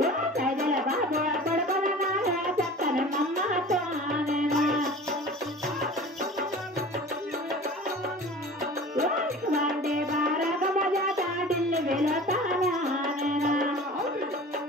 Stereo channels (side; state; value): both; normal; correlation 0.40